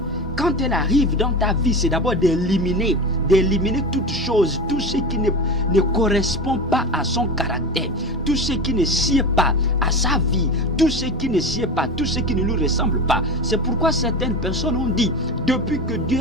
quand elle arrive dans ta vie, c'est d'abord d'éliminer toute chose, tout ce qui ne correspond pas à son caractère, tout ce qui ne sied pas à sa vie, tout ce qui ne sied pas, tout ce qui ne lui ressemble pas. C'est pourquoi certaines personnes ont dit, depuis que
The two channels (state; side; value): normal; both; correlation 0.26